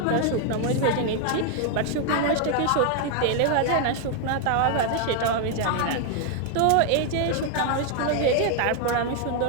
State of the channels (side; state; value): both; different; correlation 0.00